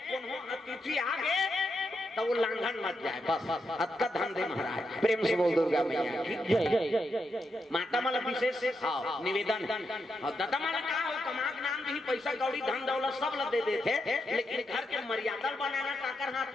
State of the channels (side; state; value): both; normal; correlation 0.84